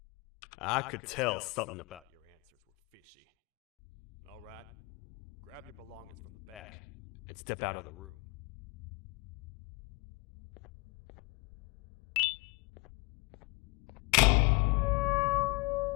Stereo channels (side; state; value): right; quieter; 24.8 dB